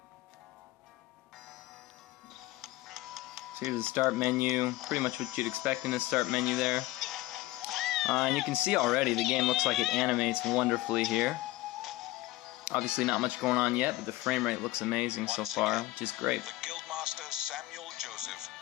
So here's the start menu, pretty much what you'd expect in the start menu there. And you can see already the game looks like it animates wonderfully here. Obviously not much going on yet, but the frame rate looks amazing so Once far, again, which is great. The guildmaster Samuel Joseph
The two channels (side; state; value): right; quieter; 18.1 dB